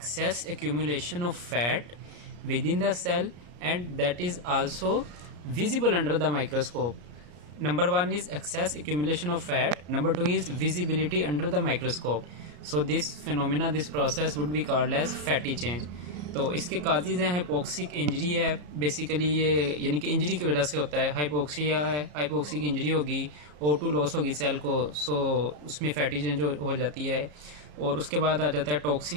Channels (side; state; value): left; late; 34 ms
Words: accumulation of fat within the cell and that is also visible under the microscope. Number one is excess accumulation of fat. Number two is visibility under the microscope. So this phenomena, this process would be called as fatty change. तो इसके काजेज़ हैं, हाइपोक्सिक इंजरी है बेसिकली ये, यानी कि इंजरी की वजह से होता है। हाइपोक्सिया है, हाइपोक्सिक इंजरी होगी, O2 लॉस होगी सेल को, सो उसमें फैटी चेंज हो जाती है। और उसके बाद आ जाता है